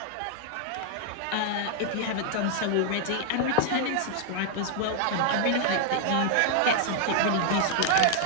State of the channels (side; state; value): both; different; correlation 0.00